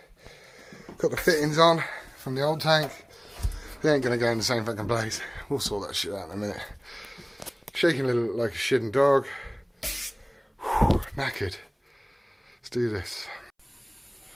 got the fittings on from the old tank. They ain't gonna go in the same fucking place. We'll sort that shit out in a minute. Shaking a little like a shitting dog. Whew, knackered. Let's do this.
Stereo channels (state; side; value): identical; both; correlation 1.00